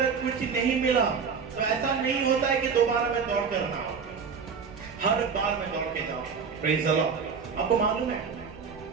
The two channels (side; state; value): left; quieter; 5.9 dB